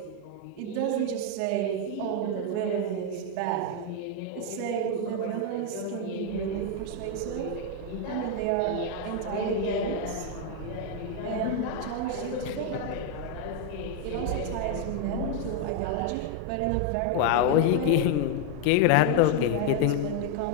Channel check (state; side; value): different; both; correlation 0.00